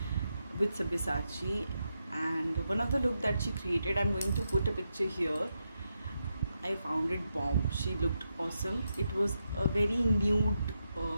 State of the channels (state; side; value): inverted; both; correlation -0.85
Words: with Sabyasachi. And one of the look that she created, I'm going to put a picture here. I found it bomb. She looked awesome. It was a very nude